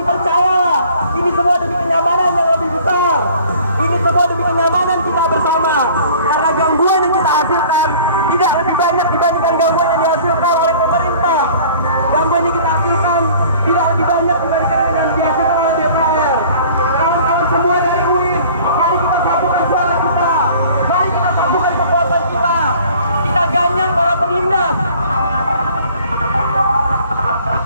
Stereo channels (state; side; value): inverted; both; correlation -0.50